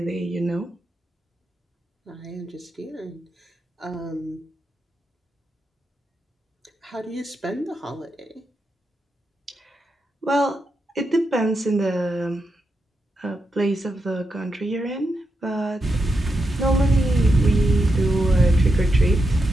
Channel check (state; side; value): normal; both; correlation 0.86